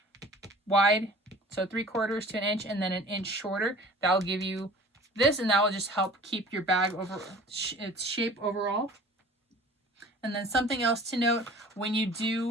wide, so 3/4 to an inch and then an inch shorter, that'll give you this, and that will just help keep your bag over its shape overall. And then something else to note, when you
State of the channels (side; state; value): both; normal; correlation 0.45